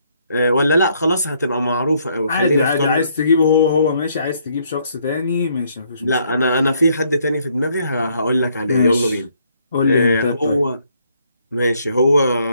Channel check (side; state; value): both; inverted; correlation -0.69